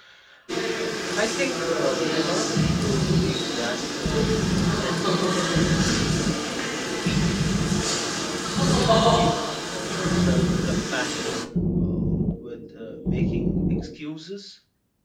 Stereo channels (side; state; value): both; identical; correlation 1.00